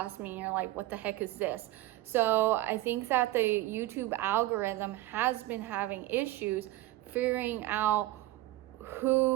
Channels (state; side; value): quieter; left; 16.9 dB